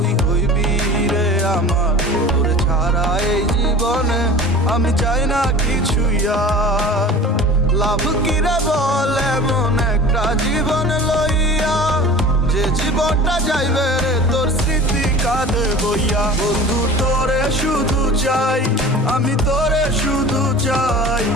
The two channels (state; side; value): normal; both; correlation 0.40